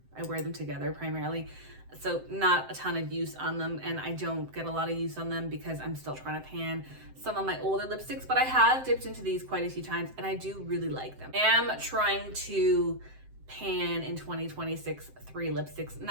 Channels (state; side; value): late; left; 7.7 ms